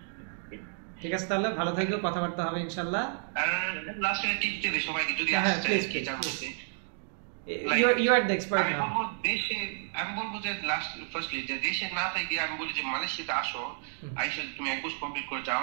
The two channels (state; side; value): silent; left; 56 dB below the other